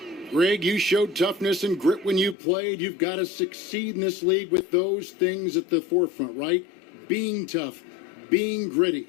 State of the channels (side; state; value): right; drops out; at 2.4 s